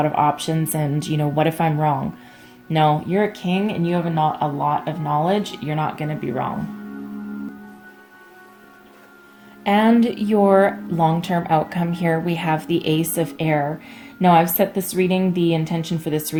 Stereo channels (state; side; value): identical; both; correlation 1.00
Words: of options, and what if I'm wrong? No, you're a king and you have a lot of knowledge. You're not going to be wrong. And your long-term outcome here, we have the Ace of Air. Now, I've set this reading, the intention for this